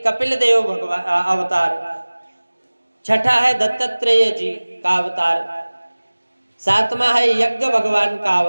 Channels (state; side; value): inverted; both; correlation -1.00